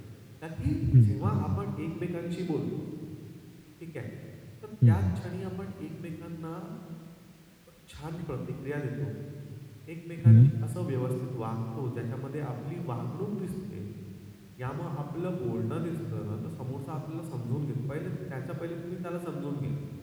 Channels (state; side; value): identical; both; correlation 1.00